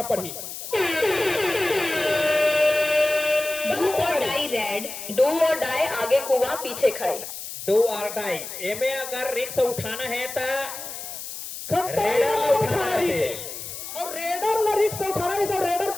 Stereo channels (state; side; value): noise; left; hiss, 9 dB below the sound